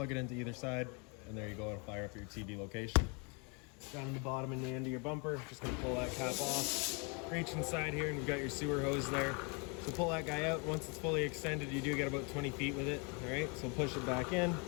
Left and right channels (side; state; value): right; quieter; 33.8 dB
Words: it into either side, and there you go. It'll fire up your TV location. Down in the bottom and the end of your bumper, just going to pull that cap off. Reach inside here, and you've got your sewer hose there. So pull that guy out. Once it's fully extended, you do get about 20 feet with it. All right, so push it back in.